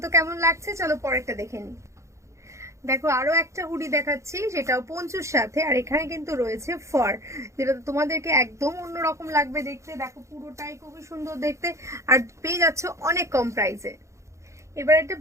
তো কেমন লাগছে, চলো পরেরটা দেখে নিই। দেখো আরো একটা হুডি দেখাচ্ছি, সেটাও পঞ্চুর সাথে। আর এখানে কিন্তু রয়েছে ফার, যেটা তোমাদেরকে একদম অন্যরকম লাগবে দেখতে। দেখো পুরোটাই খুবই সুন্দর দেখতে, আর পেয়ে যাচ্ছ অনেক কম প্রাইসে। এবার একটা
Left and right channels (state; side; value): late; left; 0.14 ms